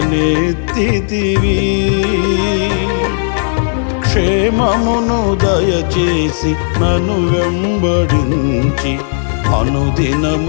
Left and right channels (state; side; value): silent; right; digital silence